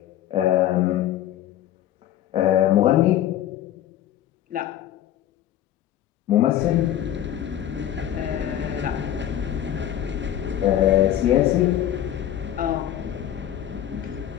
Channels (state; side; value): quieter; right; 11.6 dB